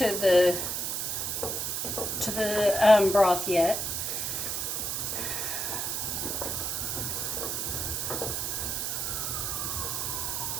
the broth yet.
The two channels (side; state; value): right; noise; hiss, 1 dB below the sound